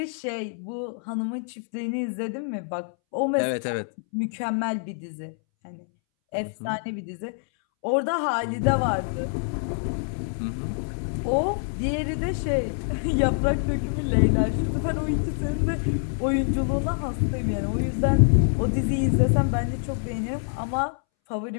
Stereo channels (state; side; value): silent; right; 61 dB below the other